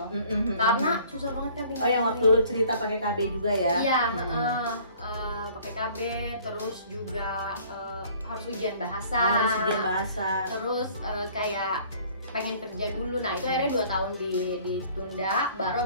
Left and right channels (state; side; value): inverted; both; correlation -0.54